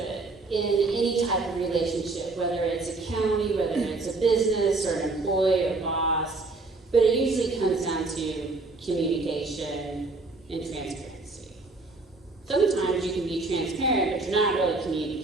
in any type of relationship, whether it's a county, whether it's a business or an employee or boss, but it usually comes down to communication and transparency. Sometimes you can be transparent, but you're not really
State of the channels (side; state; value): left; quieter; 3.4 dB